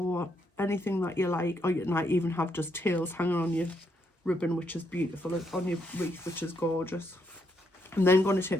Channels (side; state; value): both; normal; correlation 0.76